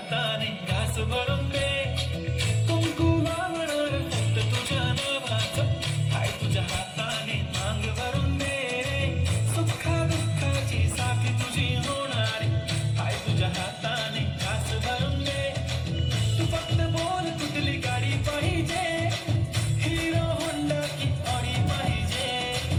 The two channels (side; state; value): both; identical; correlation 1.00